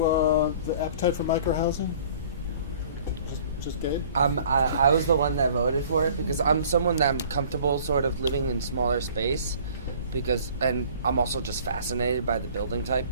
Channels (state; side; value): inverted; both; correlation -0.51